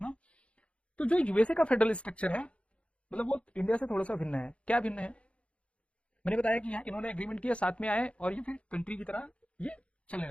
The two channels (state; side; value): late; right; 0.061 ms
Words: तो जो यूएसए का फेडरल स्ट्रक्चर है, मतलब वो इंडिया से थोड़ा सा भिन्न है। क्या भिन्न है? मैंने बताया कि यहाँ इन्होंने एग्रीमेंट किया, साथ में आए और ये फिर कंट्री की तरह ये चलने